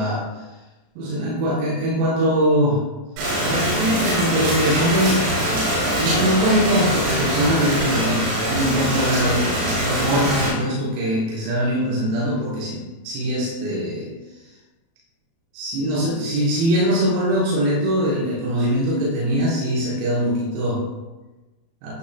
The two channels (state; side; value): late; left; 36 ms